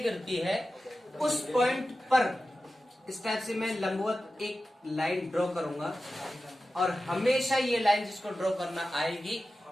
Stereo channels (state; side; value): normal; both; correlation 0.94